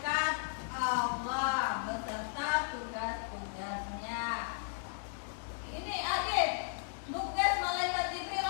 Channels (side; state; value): right; silent; digital silence